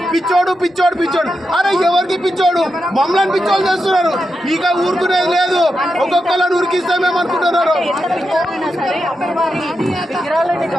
పిచ్చోడు పిచ్చోడు పిచ్చోడు. అరే ఎవరికి పిచ్చోడు, మమ్మల్ని పిచ్చోడు చేస్తున్నారు. ఇక ఊరుకునేది లేదు, ఒక్కొక్కళ్ళని ఉరికిస్తామేమో అనుకుంటున్నారు.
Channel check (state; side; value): normal; both; correlation 0.87